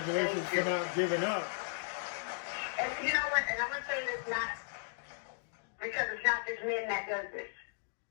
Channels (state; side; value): silent; right; digital silence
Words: for not giving up. And you know what? And I'm gonna say this not because it's not just men that does this.